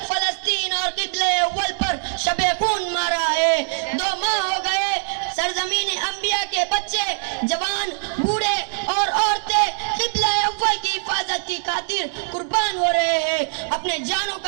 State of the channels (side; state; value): left; silent; digital silence